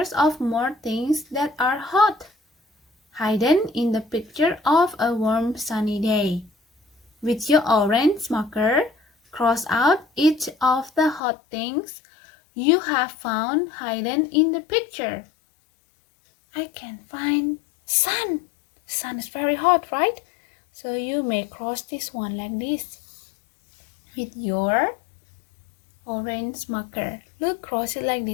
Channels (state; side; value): drops out; right; at 11.2 s